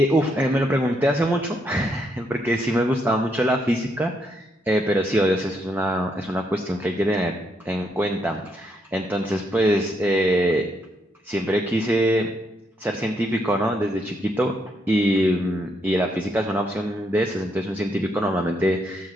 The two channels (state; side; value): normal; both; correlation 0.76